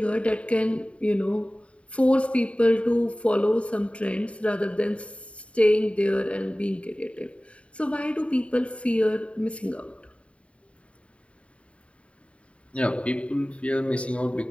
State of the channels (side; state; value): right; late; 0.062 ms